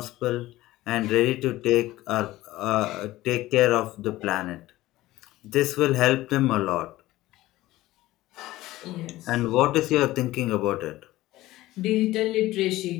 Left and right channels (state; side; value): quieter; right; 16.9 dB